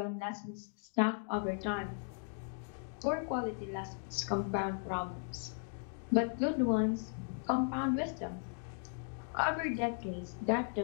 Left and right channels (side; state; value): right; silent; 53 dB below the other